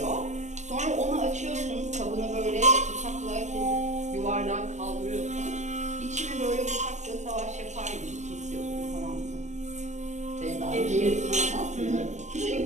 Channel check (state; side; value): late; left; 0.34 ms